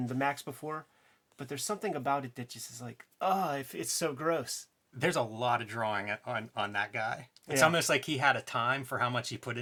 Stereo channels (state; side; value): identical; both; correlation 1.00